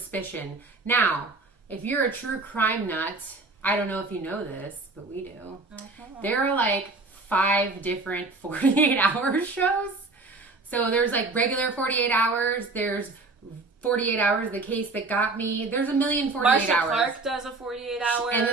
Now, if you're a true crime nut, I don't know if you know this, but we do. Okay. There are like 5 different 48-hour shows. So there's like regular 48 hours. There's 48 hours, the case that got me. There's a million 48 Marcia hours. Clark does a 48 hours. And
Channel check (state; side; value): quieter; left; 3.5 dB